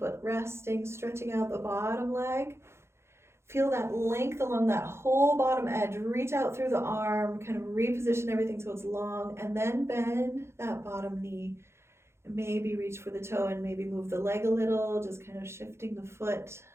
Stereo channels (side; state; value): left; late; 0.13 ms